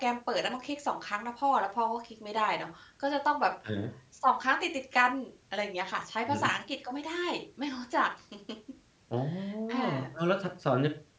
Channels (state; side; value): identical; both; correlation 1.00